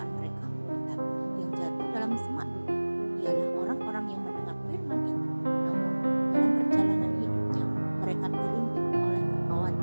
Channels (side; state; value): both; inverted; correlation -1.00